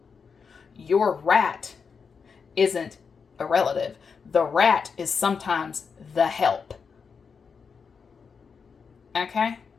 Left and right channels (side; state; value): right; quieter; 5.8 dB